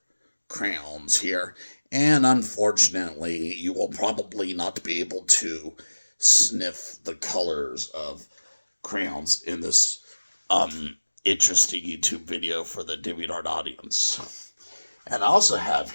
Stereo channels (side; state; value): both; inverted; correlation -1.00